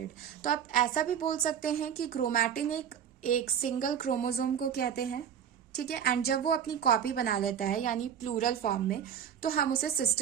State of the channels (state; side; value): quieter; left; 8.6 dB